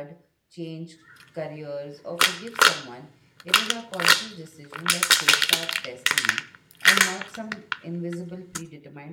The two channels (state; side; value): identical; both; correlation 1.00